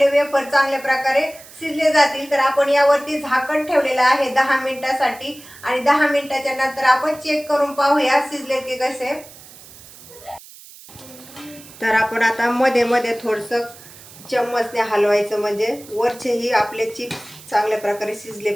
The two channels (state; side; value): noise; right; hiss, 20 dB below the sound